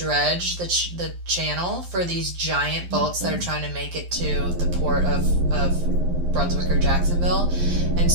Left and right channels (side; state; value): left; late; 11 ms